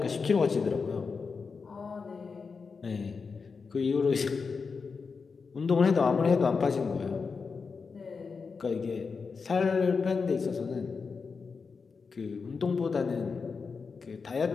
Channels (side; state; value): right; quieter; 5.1 dB